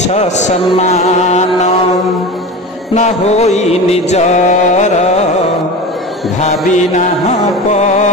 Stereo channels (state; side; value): normal; both; correlation 0.30